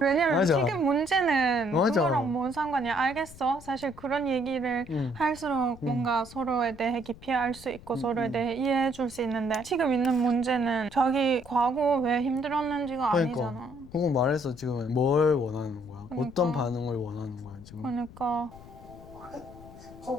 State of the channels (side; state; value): left; noise; rumble, 18 dB below the sound